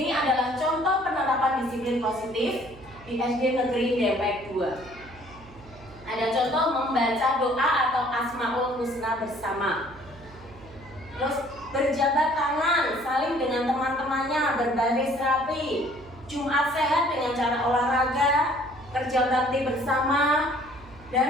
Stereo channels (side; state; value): right; noise; hum, 21 dB below the sound